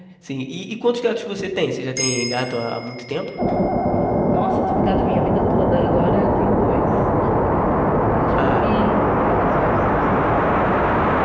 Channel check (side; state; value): both; identical; correlation 1.00